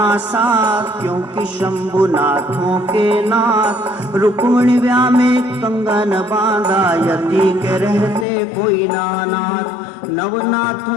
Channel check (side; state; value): right; drops out; at 8.2 s